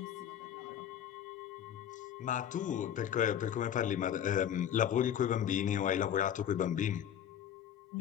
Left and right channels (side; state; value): right; quieter; 9.8 dB